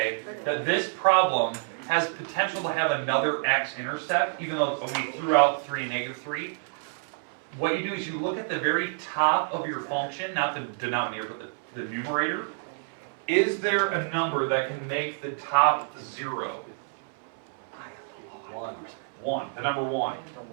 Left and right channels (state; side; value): silent; left; 59 dB below the other